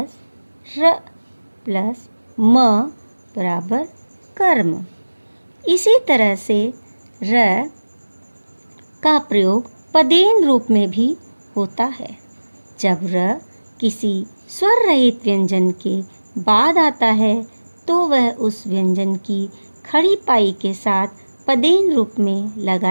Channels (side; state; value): both; inverted; correlation -1.00